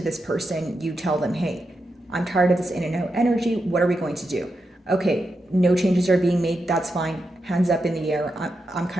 this person, you tell them, hey, I'm tired of this in and out energy. What are we going to do? Okay, no changes are being made. That's fine. Hands up in the air. I'm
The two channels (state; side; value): normal; both; correlation 0.87